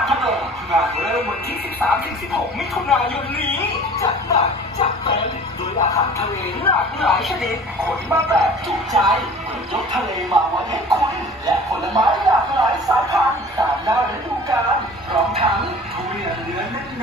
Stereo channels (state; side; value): normal; both; correlation 0.44